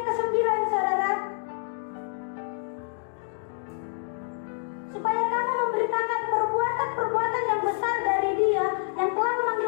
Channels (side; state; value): right; silent; digital silence